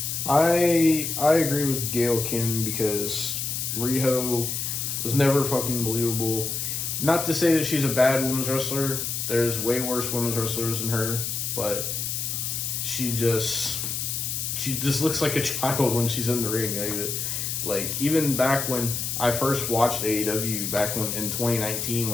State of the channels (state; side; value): noise; left; hiss, 2 dB below the sound